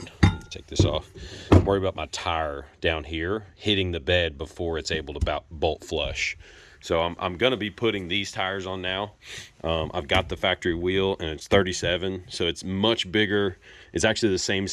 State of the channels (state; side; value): identical; both; correlation 1.00